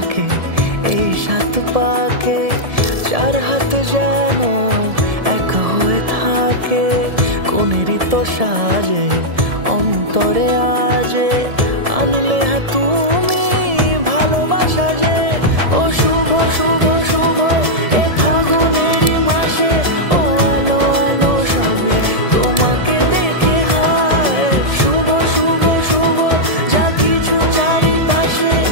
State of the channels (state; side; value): late; left; 1.7 ms